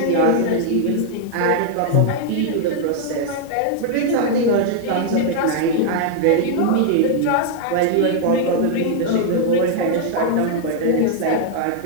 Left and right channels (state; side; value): different; both; correlation 0.00